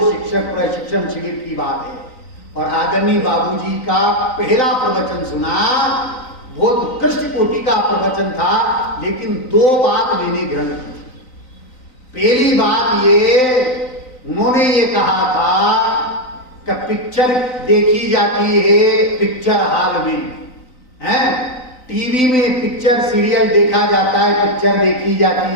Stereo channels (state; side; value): late; right; 3.9 ms